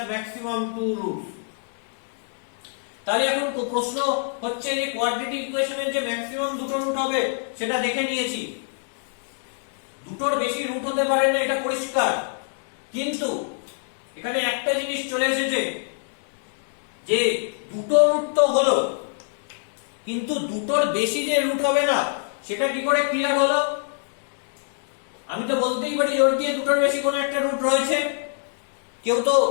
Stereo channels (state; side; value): silent; right; digital silence